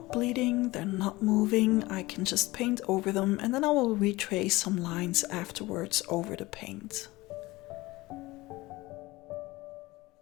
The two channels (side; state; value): right; quieter; 20.2 dB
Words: bleeding, they're not moving. I can just paint over them and then I will retrace some lines afterwards over the paint.